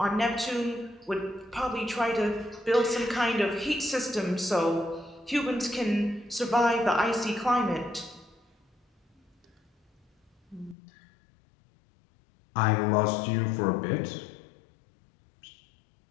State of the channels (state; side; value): drops out; right; at 10.8 s